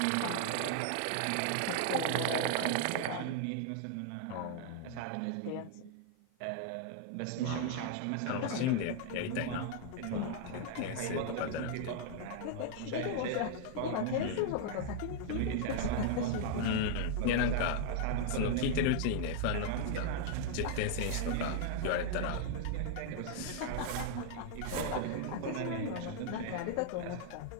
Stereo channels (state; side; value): different; both; correlation 0.00